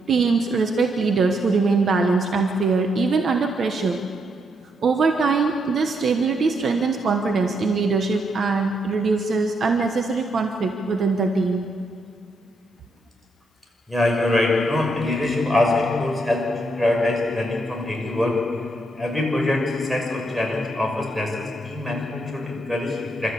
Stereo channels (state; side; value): normal; both; correlation 0.77